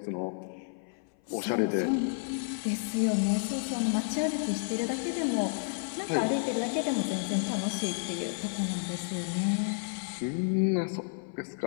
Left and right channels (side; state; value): right; silent; 57 dB below the other